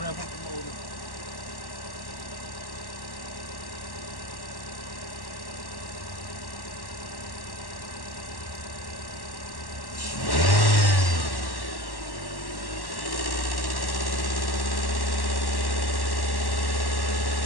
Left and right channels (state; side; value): late; right; 1.1 ms